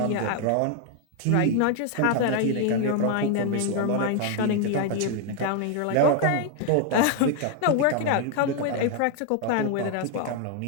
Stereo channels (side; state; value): both; different; correlation 0.00